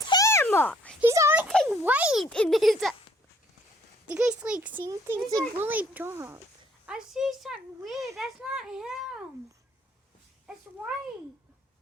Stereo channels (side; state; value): both; normal; correlation 0.62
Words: him! He's always like white in his. Do you guys like see anything? It's like really dark. I see something weird. That's not him. It's white.